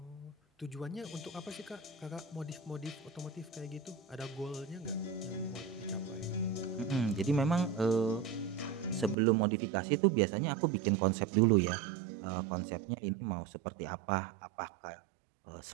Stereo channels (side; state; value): left; drops out; at 9.2 s